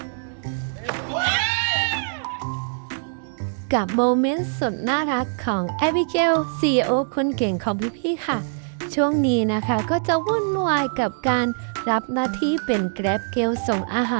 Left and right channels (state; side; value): silent; left; digital silence